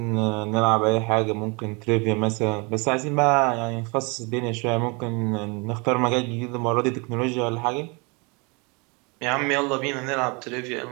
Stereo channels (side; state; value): left; quieter; 29.9 dB